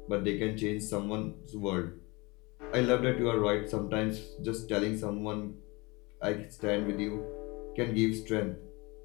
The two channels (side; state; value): right; quieter; 25.5 dB